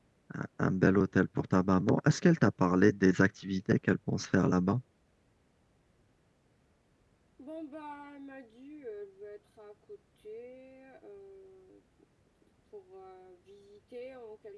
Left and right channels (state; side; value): identical; both; correlation 1.00